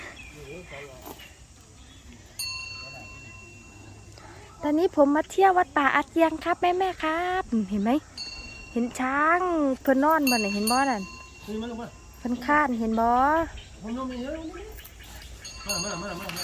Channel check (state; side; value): identical; both; correlation 1.00